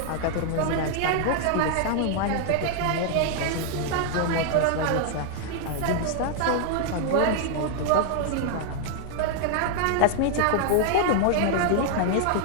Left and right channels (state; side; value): different; both; correlation 0.00